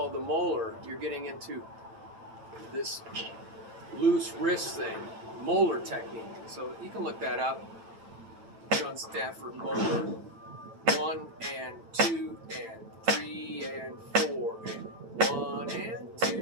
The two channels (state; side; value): late; left; 8.9 ms